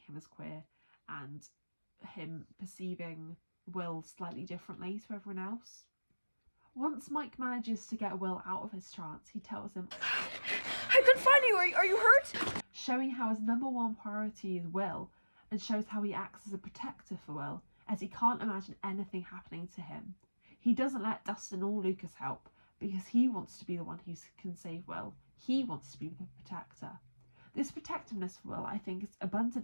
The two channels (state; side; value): inverted; both; correlation -1.00